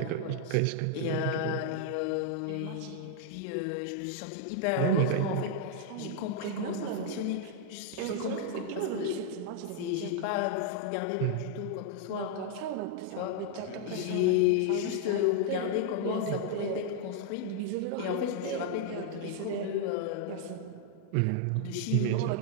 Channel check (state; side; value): different; both; correlation 0.00